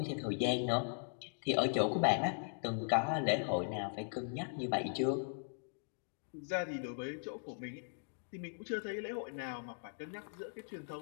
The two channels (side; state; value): right; silent; digital silence